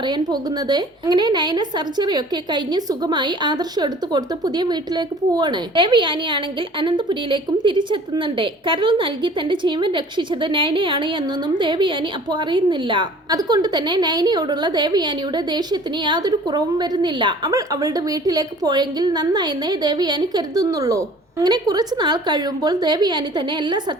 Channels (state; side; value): normal; both; correlation 0.49